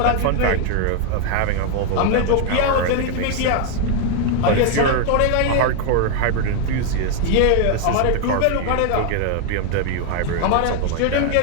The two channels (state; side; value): different; both; correlation 0.00